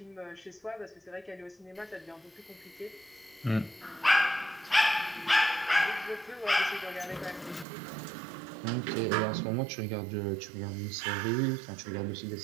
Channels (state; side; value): drops out; left; at 7.7 s